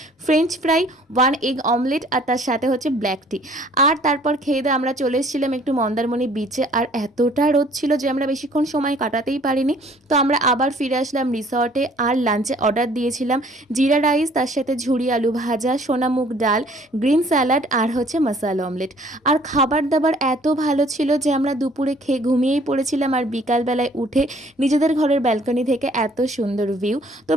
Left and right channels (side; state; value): both; normal; correlation 0.57